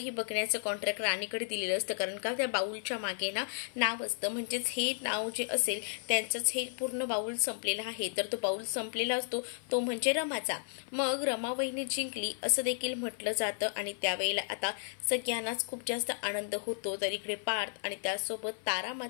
बघण्याचं कॉन्ट्रॅक्ट राणीकडे दिलेलं असतं। कारण का त्या बाउलच्या मागे ना नाव असतं, म्हणजेच हे नाव जे असेल त्यांचंच हे पूर्ण बाउल संपलेला आहे। तर तो बाउल संपलेला असतो तो म्हणजे रमाचा। मग रमा वहिनी जिंकली असं देखील म्हटलं जातं आणि त्यावेळेला आता सगळ्यांनाच खूप जास्त आनंद होतो। तर इकडे पार्थ आणि त्यासोबत तारा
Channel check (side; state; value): right; silent; 55 dB below the other